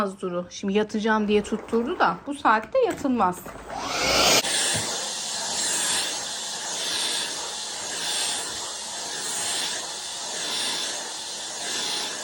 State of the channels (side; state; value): both; identical; correlation 1.00